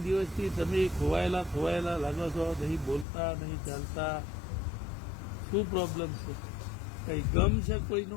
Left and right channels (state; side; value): drops out; right; at 3.1 s